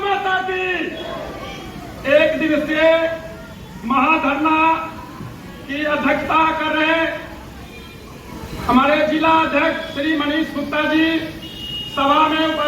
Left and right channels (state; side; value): identical; both; correlation 1.00